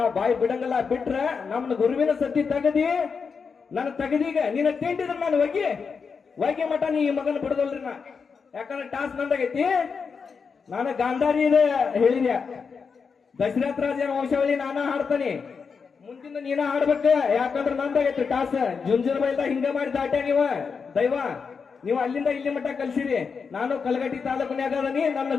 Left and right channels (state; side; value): quieter; right; 5.6 dB